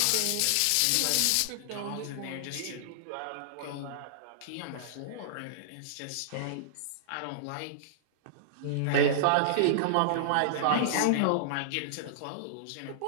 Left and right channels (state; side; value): different; both; correlation -0.01